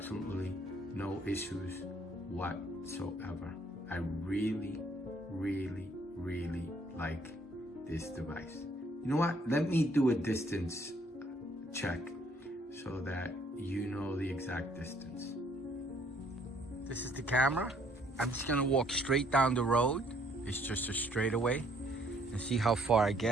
no issues whatsoever. I really, really, really like this device. You know what? Let me do a distance check so that you know the exact distance. This is the camera. I'm just gonna walk straight down the road. It's just a straightaway, and see how far I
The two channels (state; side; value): normal; both; correlation 0.64